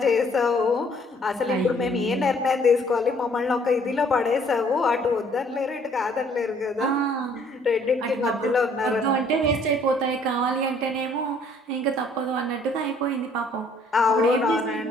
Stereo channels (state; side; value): normal; both; correlation 0.61